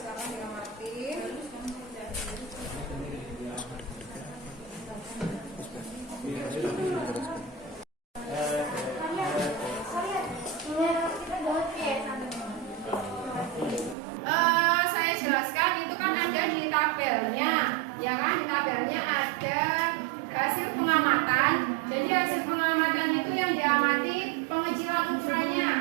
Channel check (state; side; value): drops out; left; at 14.0 s